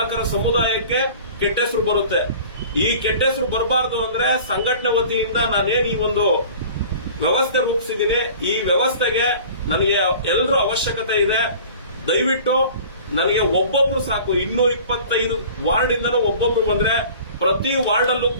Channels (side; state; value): both; inverted; correlation -0.44